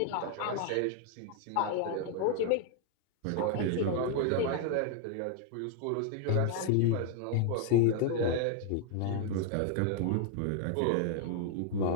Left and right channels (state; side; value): different; both; correlation 0.00